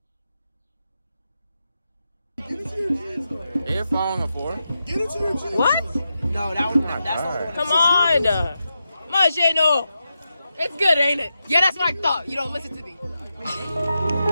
You're following a 4? Get into your jeans. What? No, that's Come on. Machino. It's good, ain't it? Yeah, that's what I thought. You don't listen to me. You see?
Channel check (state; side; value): inverted; both; correlation -0.88